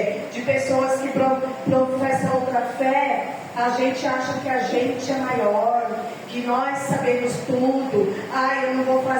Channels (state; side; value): identical; both; correlation 1.00